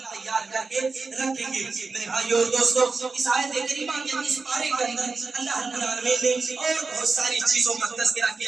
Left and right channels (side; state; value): left; quieter; 4.1 dB